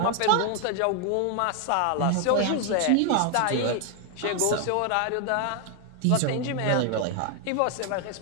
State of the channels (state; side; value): different; both; correlation 0.01